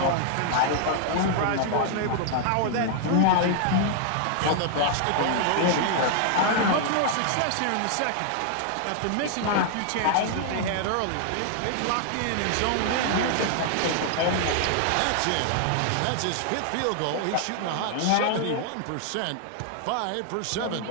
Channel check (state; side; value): different; both; correlation 0.00